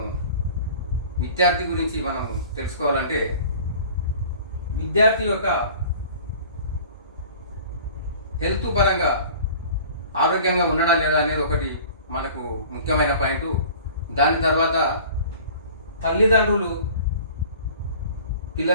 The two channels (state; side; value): inverted; both; correlation -0.45